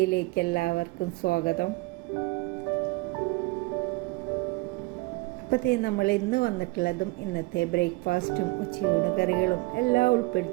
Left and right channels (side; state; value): left; quieter; 23.2 dB